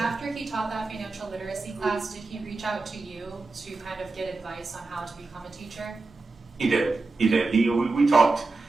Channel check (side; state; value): left; quieter; 3.6 dB